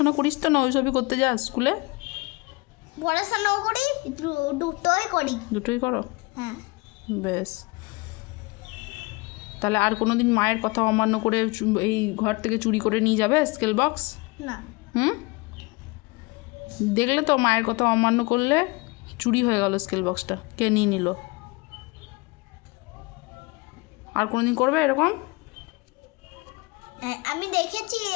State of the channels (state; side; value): quieter; right; 25.4 dB